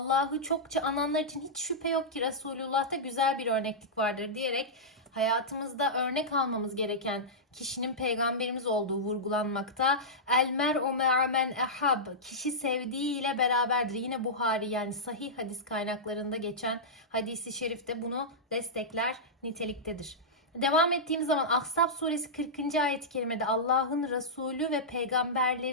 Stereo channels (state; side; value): normal; both; correlation -0.12